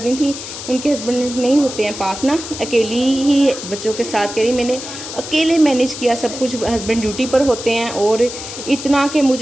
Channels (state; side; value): noise; left; hiss, 10 dB below the sound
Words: रही थी, उनके हस्बैंड नहीं होते हैं पास ना, अकेली ही बच्चों के साथ कह रही, मैंने अकेले मैनेज किया सब कुछ, हस्बैंड ड्यूटी पर होते हैं, और इतना कि